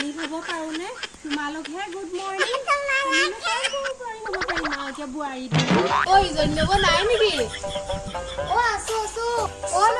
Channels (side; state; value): both; identical; correlation 1.00